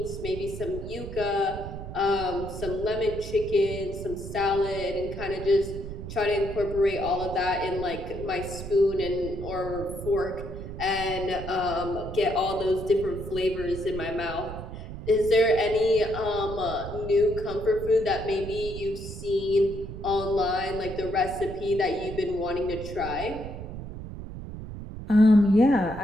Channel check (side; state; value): right; noise; rumble, 9 dB below the sound